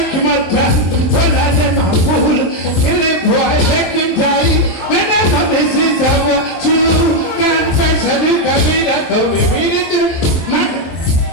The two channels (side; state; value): right; late; 23 ms